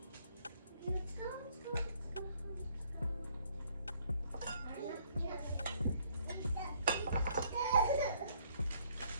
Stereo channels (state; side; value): inverted; both; correlation -0.65